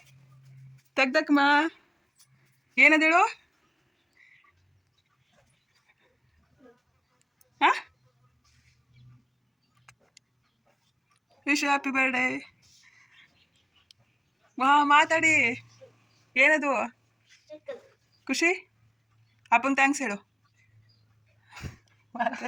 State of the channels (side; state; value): both; identical; correlation 1.00